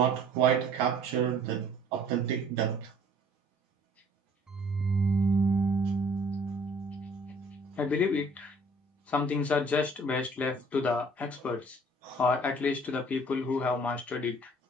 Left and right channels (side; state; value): both; normal; correlation 0.55